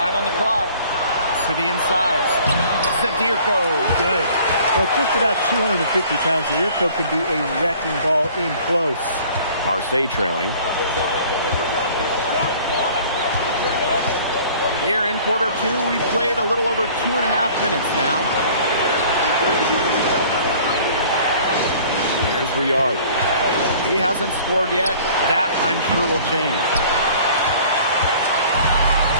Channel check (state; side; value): inverted; both; correlation -0.51